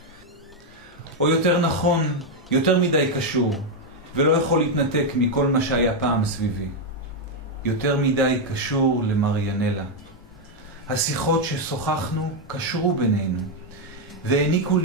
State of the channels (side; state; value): both; normal; correlation 0.02